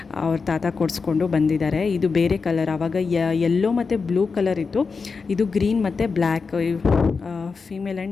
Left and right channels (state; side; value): quieter; right; 4.9 dB